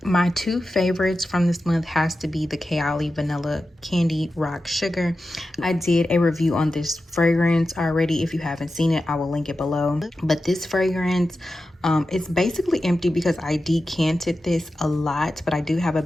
my two favorites from this month has to be the Kayali Vanilla Candy Rock Sugar. I did a review on this fragrance already. If you haven't seen it, I will link it below. But this fragrance, it's basically empty because I decanted this a lot, but I do have a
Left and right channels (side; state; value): both; normal; correlation 0.92